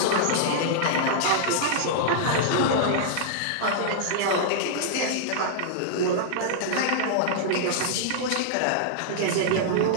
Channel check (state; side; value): different; both; correlation -0.01